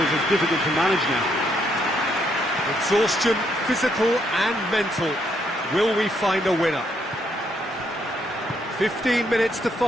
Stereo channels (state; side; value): normal; both; correlation 0.73